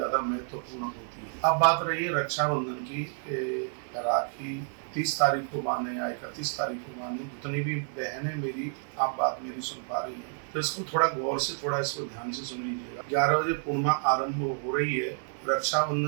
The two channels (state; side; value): silent; left; 58 dB below the other